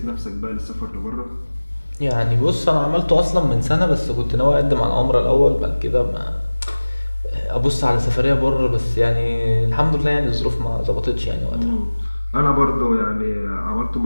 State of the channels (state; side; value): inverted; both; correlation -1.00